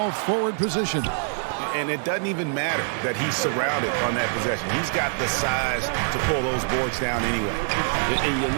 forward position. And it doesn't even matter that he's surrounded on that possession. He's got the size to pull those boards down anyway. And you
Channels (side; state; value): left; silent; 57 dB below the other